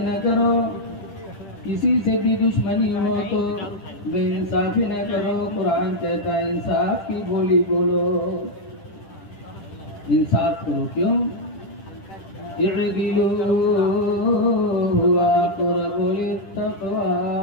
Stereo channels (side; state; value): right; late; 10 ms